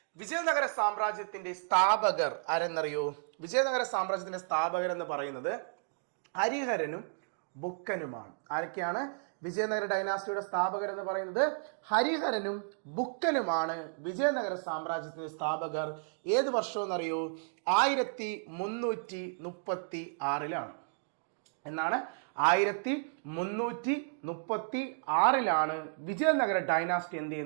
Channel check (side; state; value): left; silent; digital silence